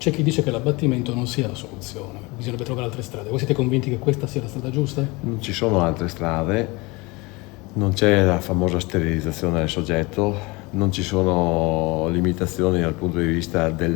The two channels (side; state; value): right; quieter; 24.9 dB